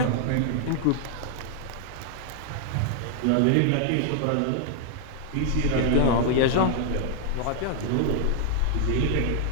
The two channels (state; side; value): different; both; correlation 0.00